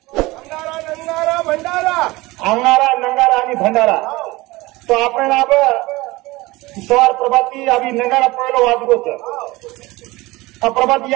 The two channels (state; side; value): quieter; left; 20.8 dB